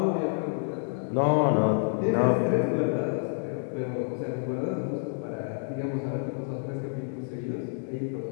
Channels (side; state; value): right; silent; digital silence